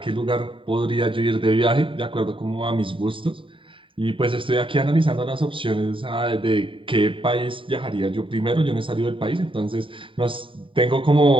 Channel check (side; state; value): left; late; 0.25 ms